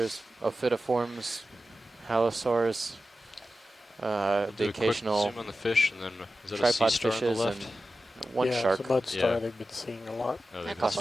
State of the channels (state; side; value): normal; both; correlation 0.93